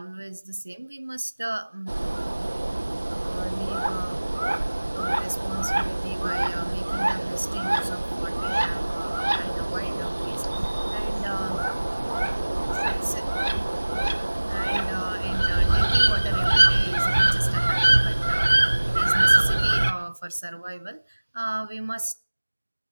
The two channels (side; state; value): both; inverted; correlation -1.00